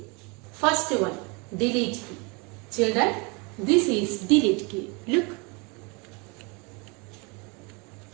First one, delete key. Children, this is delete key. Look.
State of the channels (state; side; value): quieter; left; 29.5 dB